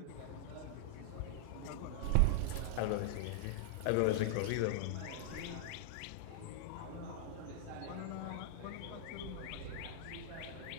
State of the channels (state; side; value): different; both; correlation -0.01